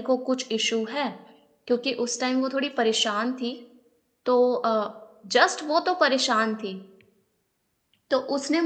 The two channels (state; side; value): identical; both; correlation 1.00